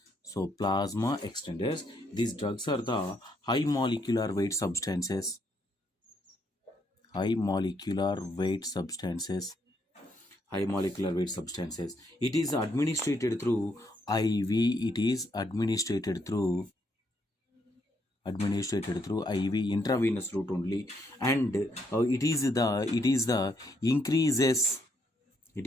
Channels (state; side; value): normal; both; correlation 0.74